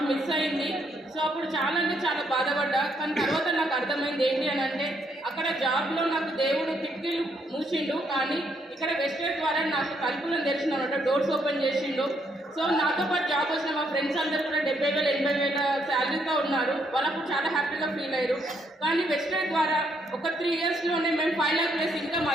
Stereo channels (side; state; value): both; normal; correlation 0.73